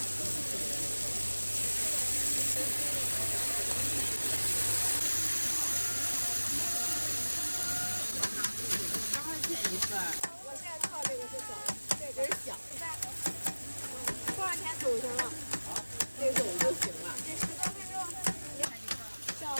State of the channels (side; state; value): both; inverted; correlation -1.00